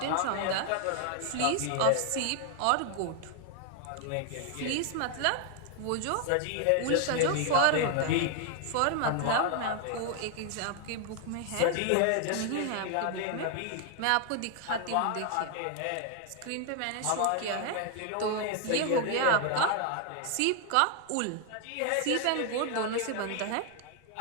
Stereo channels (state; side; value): different; both; correlation 0.00